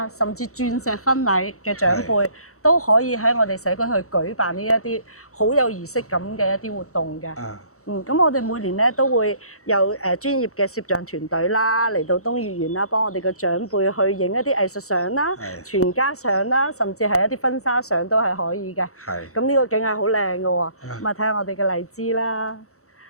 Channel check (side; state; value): right; late; 0.64 ms